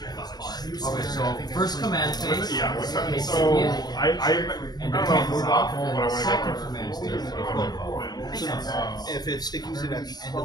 Okay, so first command phase. yeah, Okay, so I and don't then know if move off, and but I then want to second get command phase. So if it stickies it at the end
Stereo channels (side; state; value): right; late; 0.19 ms